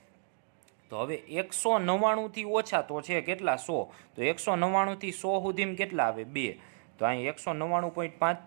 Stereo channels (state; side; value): silent; left; digital silence